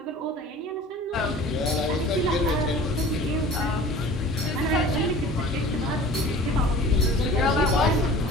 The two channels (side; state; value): both; normal; correlation 0.43